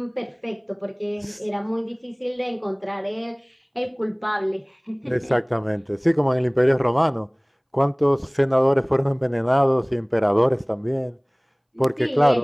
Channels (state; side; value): identical; both; correlation 1.00